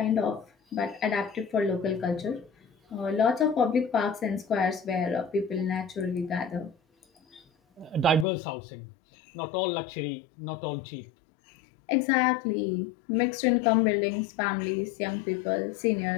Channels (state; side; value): drops out; right; at 8.2 s